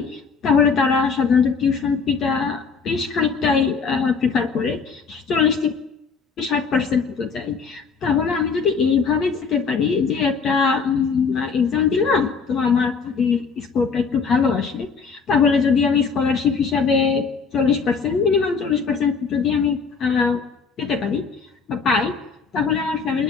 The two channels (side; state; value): right; quieter; 5.3 dB